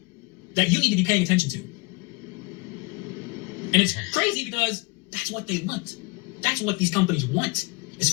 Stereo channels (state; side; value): quieter; right; 26.3 dB